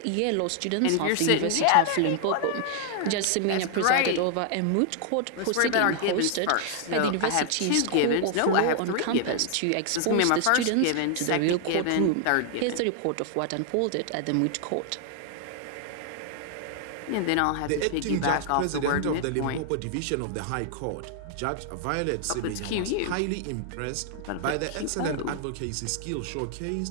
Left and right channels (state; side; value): different; both; correlation 0.00